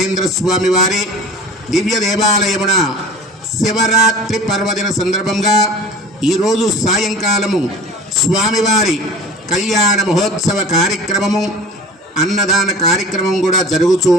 స్వామి వారి దివ్య దేవాలయమున శివరాత్రి పర్వదిన సందర్భంగా ఈరోజు సాయంకాలము స్వామివారి కళ్యాణ మహోత్సవ కార్యక్రమము, అన్నదాన కార్యక్రమం కూడా జరుగుతూ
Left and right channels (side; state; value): both; normal; correlation 0.41